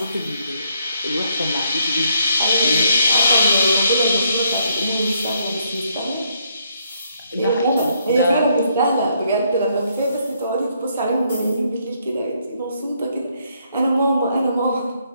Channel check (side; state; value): both; inverted; correlation -0.73